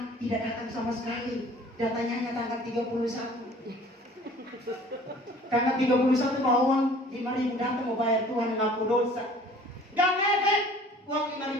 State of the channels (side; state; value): both; normal; correlation 0.50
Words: tidak datang sama sekali. Datanya hanya tanggal 31. Tanggal 31 bawa uang 5.000 datang mau bayar Tuhan ngaku dosa. Gak ngefek. Uang